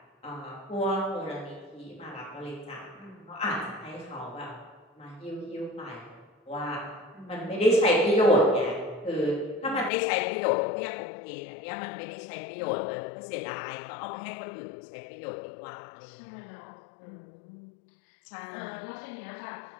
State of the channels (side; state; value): right; drops out; at 9.9 s